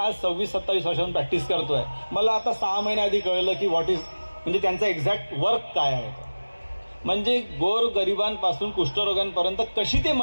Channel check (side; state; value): both; inverted; correlation -1.00